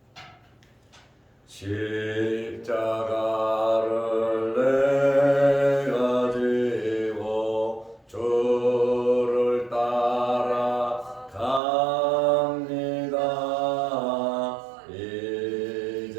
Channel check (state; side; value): drops out; left; at 11.6 s